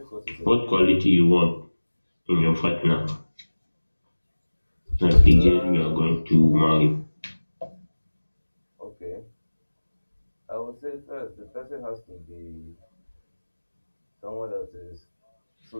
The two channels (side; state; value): both; inverted; correlation -1.00